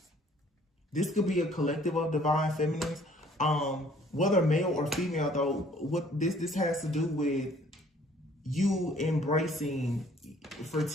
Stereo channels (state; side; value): normal; both; correlation 0.58